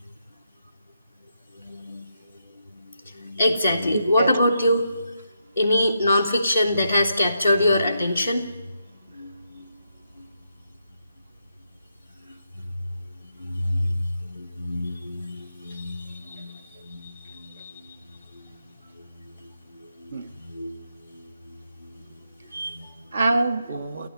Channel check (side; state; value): both; inverted; correlation -0.82